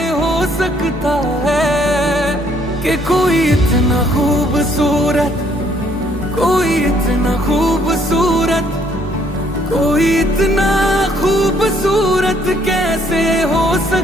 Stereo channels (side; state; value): both; normal; correlation 0.66